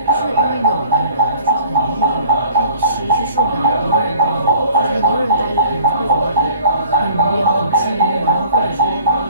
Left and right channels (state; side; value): inverted; both; correlation -0.52